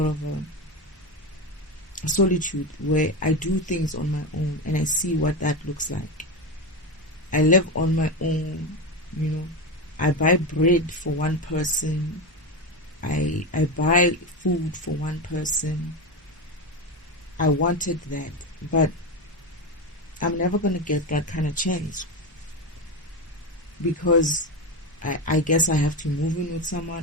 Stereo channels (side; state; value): both; normal; correlation 0.17